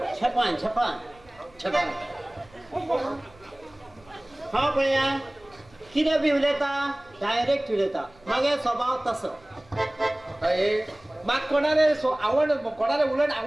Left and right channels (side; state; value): right; noise; rumble, 28 dB below the sound